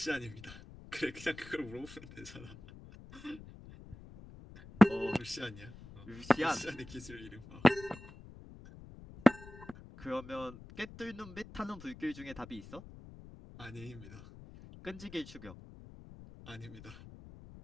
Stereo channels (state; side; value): noise; left; rumble, 16 dB below the sound